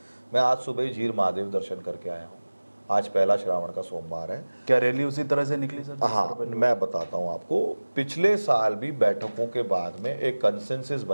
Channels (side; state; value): both; inverted; correlation -1.00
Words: मैं आज सुबह ही झीर महादेव दर्शन करके आया हूँ। आज पहला श्रावण का सोमवार है। क्या रैली उसी तरह से निकली सर? हाँ, मैं बताता हूँ आपको। पिछले साल भी बैठकों के बाद में एक कंसेंसस